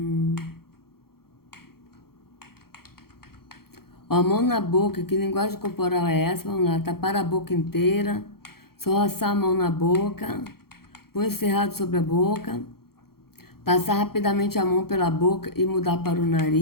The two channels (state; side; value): late; right; 0.94 ms